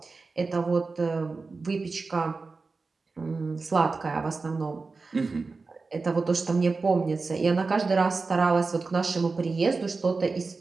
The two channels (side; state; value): left; quieter; 4.1 dB